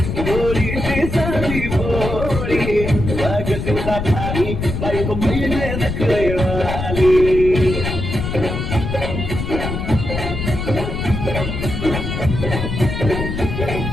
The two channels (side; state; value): left; noise; rumble, 4 dB below the sound